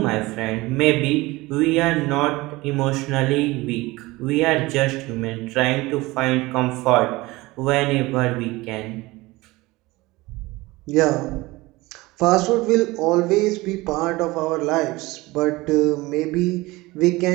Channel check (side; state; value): left; quieter; 20.9 dB